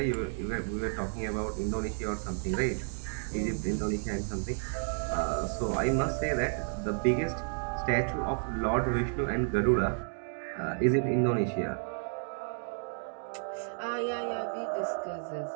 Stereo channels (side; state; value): left; silent; digital silence